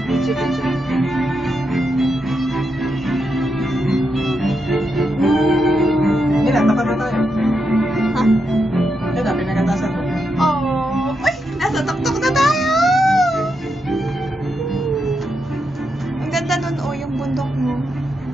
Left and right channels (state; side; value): normal; both; correlation 0.84